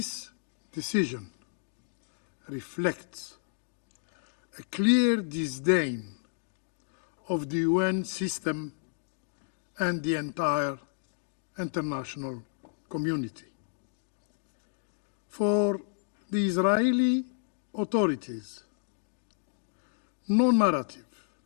decision reflects a clear disdain of the UN system and the entire international community. For the Israeli authorities, no narrative,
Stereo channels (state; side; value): silent; right; digital silence